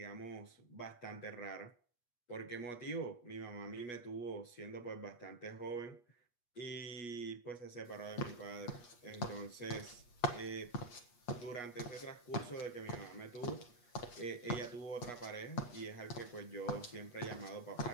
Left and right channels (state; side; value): late; right; 8.3 ms